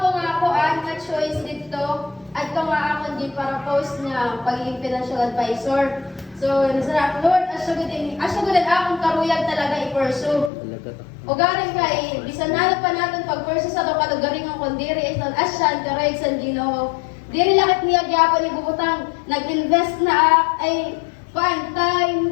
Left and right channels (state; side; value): drops out; right; at 10.5 s